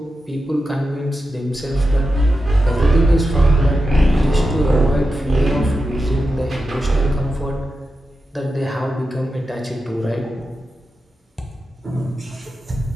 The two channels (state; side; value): normal; both; correlation 0.90